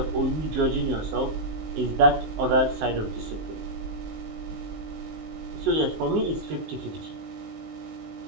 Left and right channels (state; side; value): late; left; 19 ms